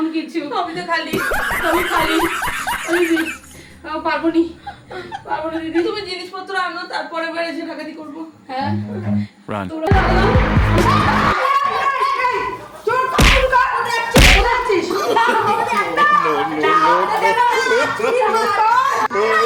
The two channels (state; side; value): identical; both; correlation 1.00